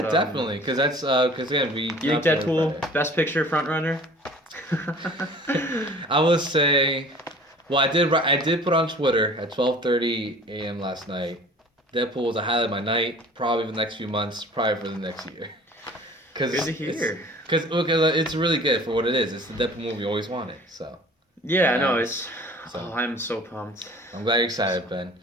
but, definitely, because that's because again we. You think Deadpool Best Picture front runner? I would say, well, I did put on Twitter at 12:30 a.m. last night. Deadpool was a highlight of my night, probably for the next few months, probably for the next year. Good to hear. Because it's really good for what it is. It's the Deadpool movie you always wanted. So. Yeah, no, it's. So, I'm so pumped. I'm glad you're excited, Ben.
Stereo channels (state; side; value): normal; both; correlation 0.46